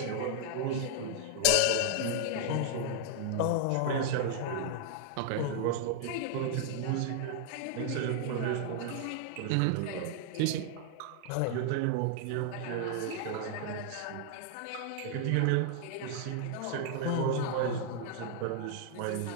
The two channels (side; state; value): both; different; correlation 0.00